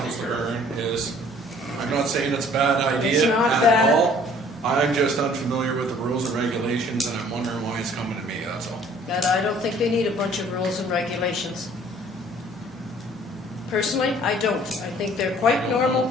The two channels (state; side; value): normal; both; correlation 0.55